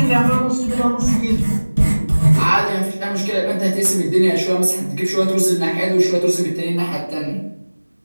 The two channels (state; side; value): inverted; both; correlation -1.00